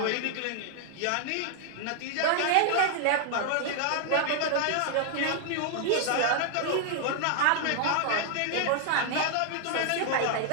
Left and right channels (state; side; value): different; both; correlation 0.00